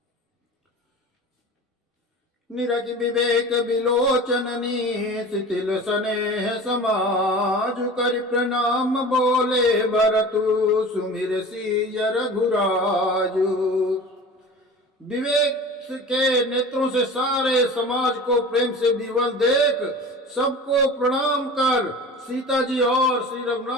निरखि विवेक विलोचननी शिथिल स्नेह समाज कर प्रणाम बोले भरतु सुमिर सिय रघुराजु। विवेक के नेत्रों से सारे समाज को प्रेम से विवल देख सबको प्रणाम कर सीता जी और श्री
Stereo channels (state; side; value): normal; both; correlation 0.37